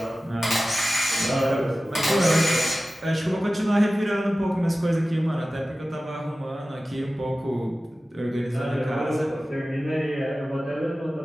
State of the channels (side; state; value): both; normal; correlation 0.96